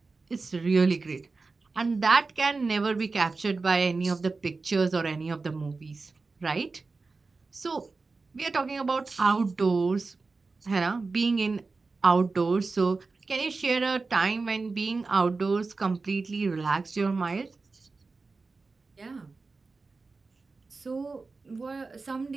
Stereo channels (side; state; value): left; quieter; 4.0 dB